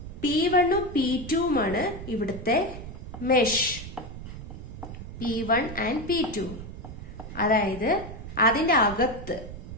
P1ഉം P2ഉമാണ് ഇവിടുത്തെ മെഷ്, P1 and P2. അതായത് അതിന്റെ അകത്ത്,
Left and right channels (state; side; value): noise; right; rumble, 11 dB below the sound